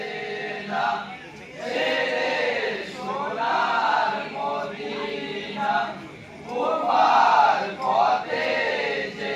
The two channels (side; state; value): both; identical; correlation 1.00